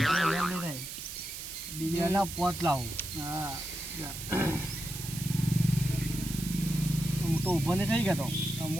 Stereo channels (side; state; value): right; noise; hiss, 9 dB below the sound